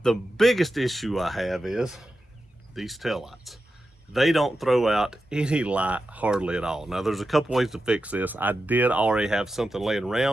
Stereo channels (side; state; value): both; normal; correlation 0.91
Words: the biggest issue I have is these taillights. They don't throw out any light hardly at all. Now, there's a couple ways to fix this. I did already have something laying